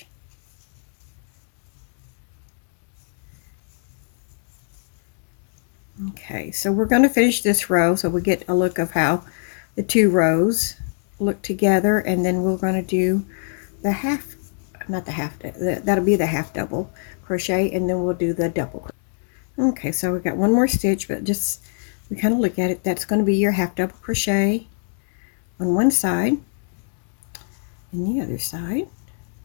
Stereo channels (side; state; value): right; silent; digital silence